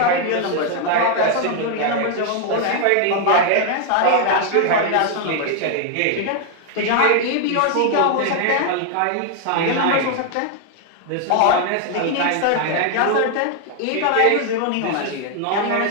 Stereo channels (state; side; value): different; both; correlation 0.00